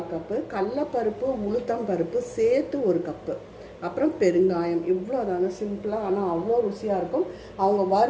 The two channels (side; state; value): both; identical; correlation 1.00